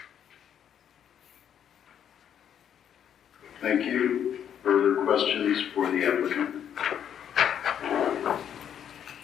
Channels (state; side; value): quieter; right; 9.1 dB